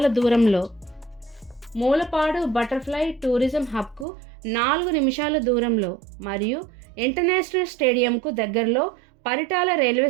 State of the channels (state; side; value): drops out; left; at 4.0 s